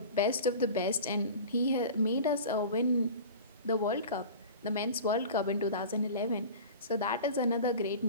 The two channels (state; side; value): inverted; both; correlation -0.36